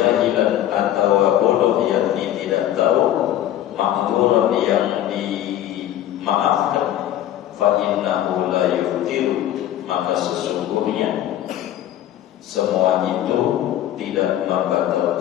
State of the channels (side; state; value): right; quieter; 12.3 dB